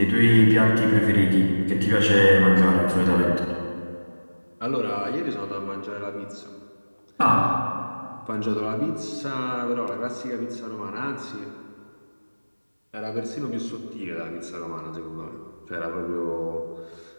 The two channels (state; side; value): inverted; both; correlation -1.00